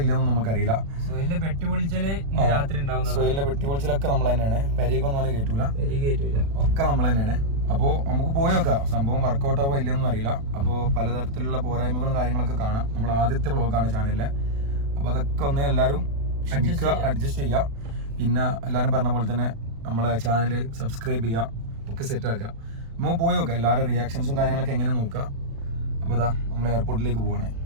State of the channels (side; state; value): left; late; 36 ms